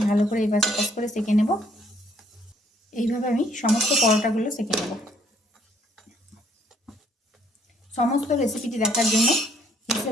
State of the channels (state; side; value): normal; both; correlation 0.65